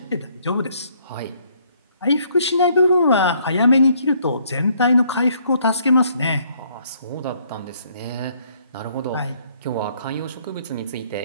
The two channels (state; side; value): inverted; both; correlation -0.66